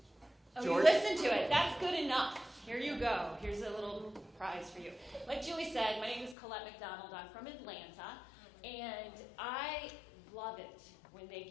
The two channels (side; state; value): right; drops out; at 6.4 s